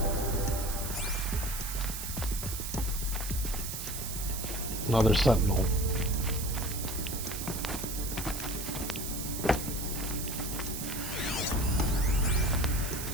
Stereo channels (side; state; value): right; noise; hiss, 6 dB below the sound